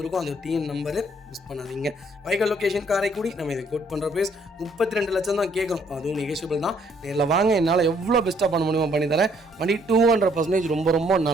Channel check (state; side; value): normal; both; correlation 0.66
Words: அது டிஎன் நம்பரு, மிஸ் பண்ணாதீங்க. வைக்கல் லொக்கேஷன் காரைக்குடி. நம்ம இதை கோட் பண்ணுற ப்ரைஸ் 32 லட்சம் தான் கேட்குறோம். அதுவும் நெகோஷியபிள் தான். நேரில் வாங்க, என்னால் எவ்வளோ பெஸ்ட்டாக பண்ண முடியுமோ பண்ணி தரேன். வண்டி 200% ரொம்ப ரொம்ப